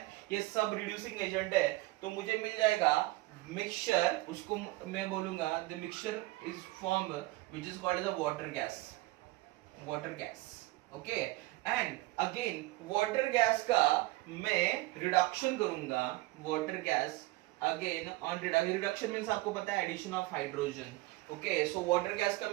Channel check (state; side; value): quieter; left; 19.8 dB